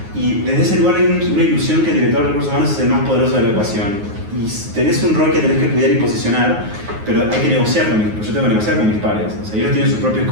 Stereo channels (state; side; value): late; left; 9.5 ms